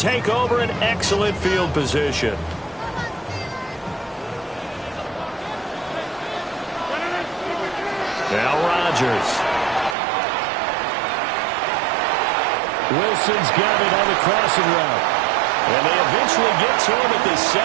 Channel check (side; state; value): left; drops out; at 10.0 s